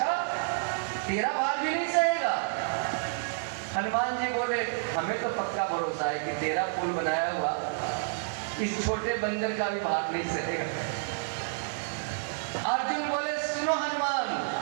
तेरा भार भी नहीं सहेगा? हनुमान जी बोले हमें तो पक्का भरोसा है कि तेरा पुल बनाया हुआ इस छोटे बंदर का भी भार नहीं सहेगा। अर्जुन बोले सुनो हनुमान,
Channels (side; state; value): left; silent; digital silence